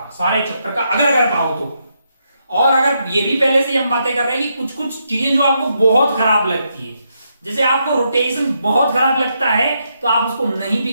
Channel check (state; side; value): inverted; both; correlation -0.80